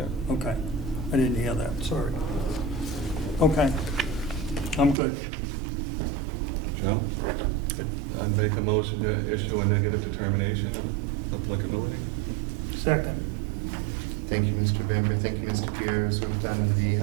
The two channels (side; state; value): left; drops out; at 5.0 s